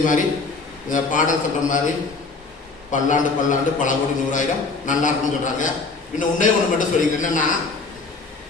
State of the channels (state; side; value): quieter; right; 4.0 dB